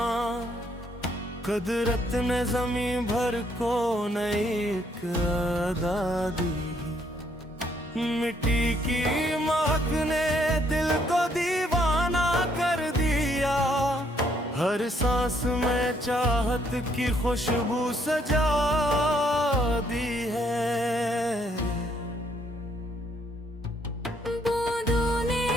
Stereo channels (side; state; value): both; normal; correlation 0.70